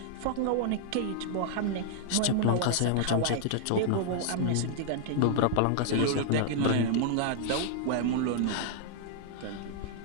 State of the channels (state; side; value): different; both; correlation -0.01